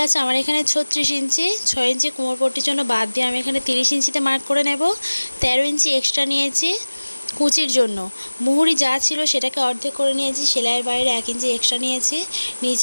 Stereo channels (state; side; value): inverted; both; correlation -1.00